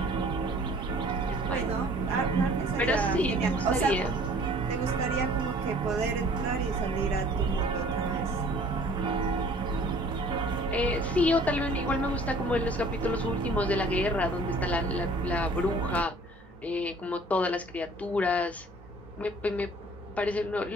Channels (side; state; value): both; normal; correlation 0.52